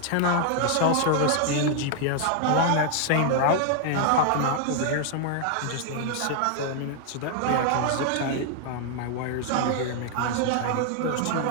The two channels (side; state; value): both; different; correlation 0.00